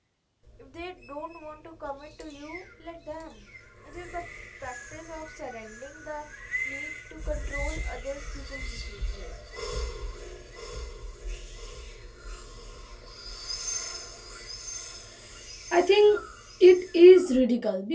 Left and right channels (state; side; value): identical; both; correlation 1.00